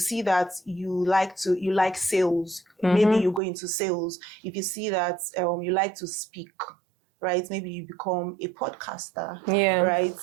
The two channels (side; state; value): left; drops out; at 3.4 s